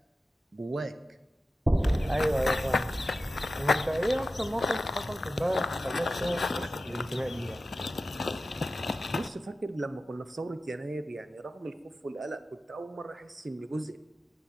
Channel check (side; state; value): both; normal; correlation 0.94